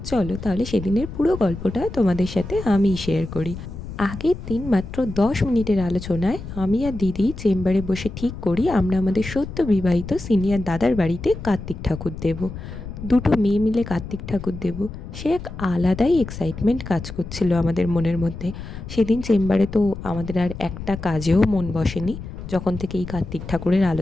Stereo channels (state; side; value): noise; left; rumble, 10 dB below the sound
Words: চলো তাহলে সেদিনের পুরো গল্পটা তোমাদের সাথে আমি শেয়ার করি। আগের দিন মাত্র 10 মিনিটের আলোচনায় আমি আর দিদি চেম্বারে বসে ঠিক করি আমরা আমাদের সদ্য বিবাহিত সিনিয়র দাদার বাড়িতে কার্তিক ঠাকুর দেব। দুটো মেয়ে মিলে কার্তিক ঠাকুর দেব, সে এক আলাদাই এক্সাইটমেন্ট কাজ করছিল আমাদের মনের মধ্যে। সেদিন চেম্বারে তো আমাদের আর একটা কাজেও মন বসেনি যখন থেকে এই কার্তিক ঠাকুরের